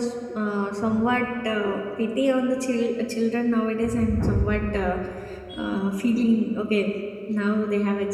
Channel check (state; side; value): identical; both; correlation 1.00